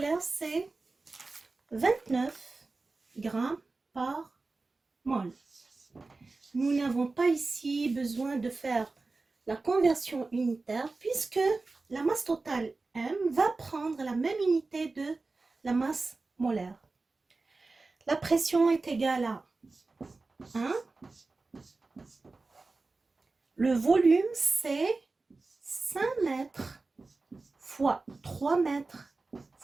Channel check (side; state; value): left; quieter; 3.6 dB